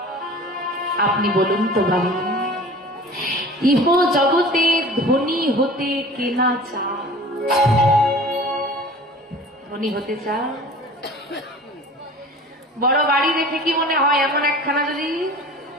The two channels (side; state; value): both; normal; correlation 0.42